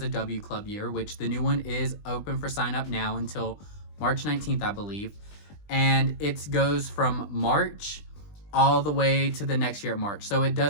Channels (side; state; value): right; late; 20 ms